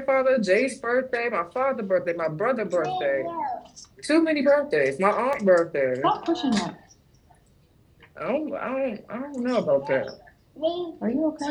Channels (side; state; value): both; identical; correlation 1.00